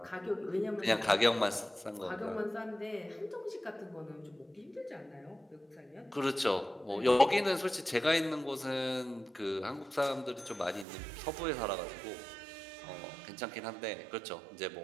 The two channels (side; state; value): left; drops out; at 10.9 s